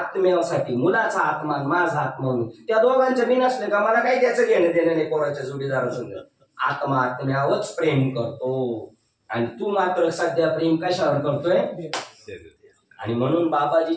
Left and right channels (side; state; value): both; identical; correlation 1.00